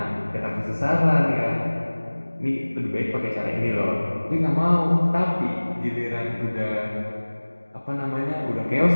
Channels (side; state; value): both; inverted; correlation -1.00